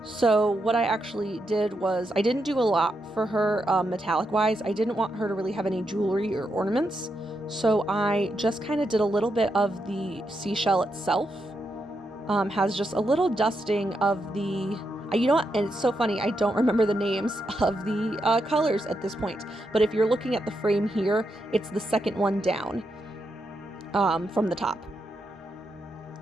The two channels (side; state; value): both; normal; correlation 0.83